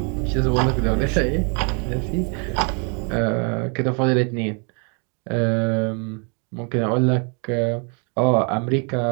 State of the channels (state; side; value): quieter; left; 36.7 dB